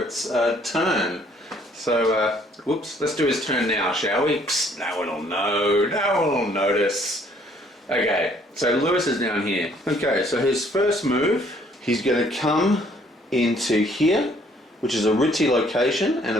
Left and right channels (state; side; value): normal; both; correlation 0.62